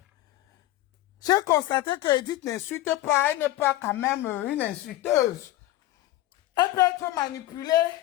J'ai constaté que Edith n'insulte pas, elle n'est pas quand même une insulteuse. Elle peut être manipulée,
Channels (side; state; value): right; quieter; 15.6 dB